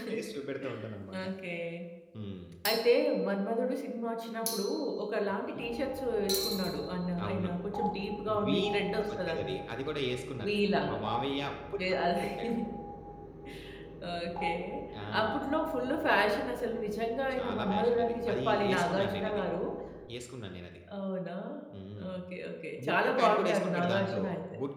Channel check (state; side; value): identical; both; correlation 1.00